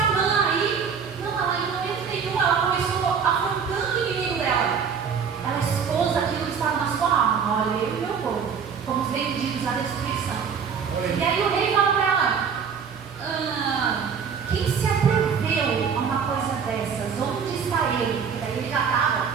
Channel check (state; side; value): quieter; left; 6.6 dB